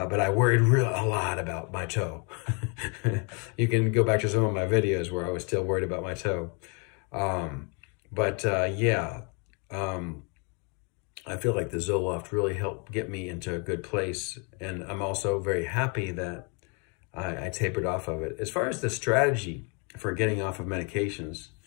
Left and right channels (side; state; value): right; quieter; 35.0 dB